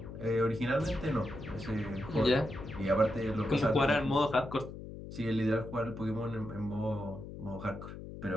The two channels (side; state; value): left; noise; hum, 11 dB below the sound